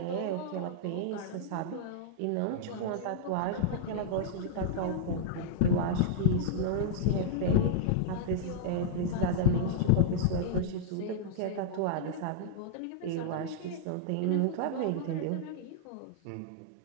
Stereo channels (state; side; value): different; both; correlation -0.02